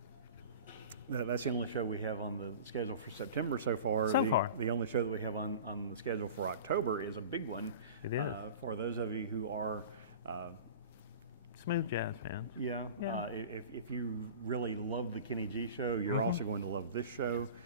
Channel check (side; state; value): both; inverted; correlation -0.37